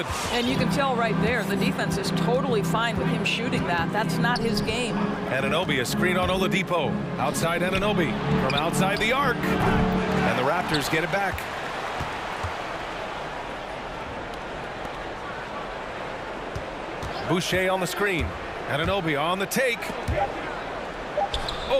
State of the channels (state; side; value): identical; both; correlation 1.00